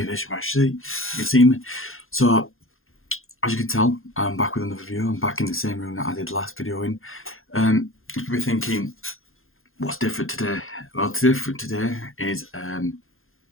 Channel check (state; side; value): late; right; 0.60 ms